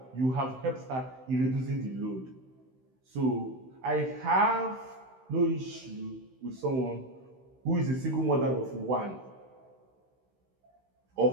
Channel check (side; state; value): left; late; 16 ms